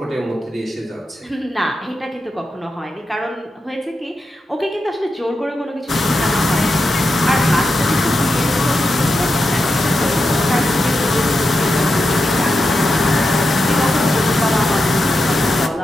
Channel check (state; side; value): normal; both; correlation 0.87